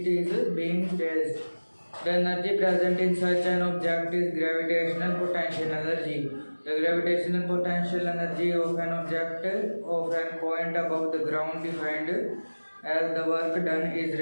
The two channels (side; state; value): both; inverted; correlation -1.00